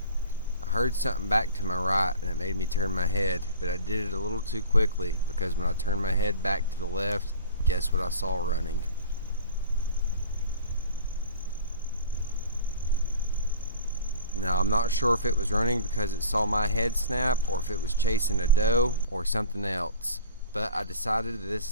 I heard something back to my right and it made me turn my head, but I did it a little too quickly because when I turned my head back to the left, guess what I saw running? Now, I'm not sure if it was running because it saw my head snap or if it was chasing a doe or something else. But I decided that this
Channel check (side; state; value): both; inverted; correlation -0.42